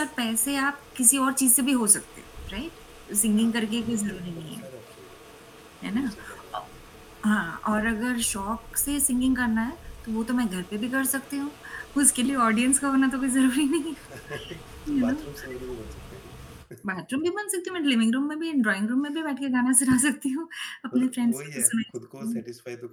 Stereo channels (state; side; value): identical; both; correlation 1.00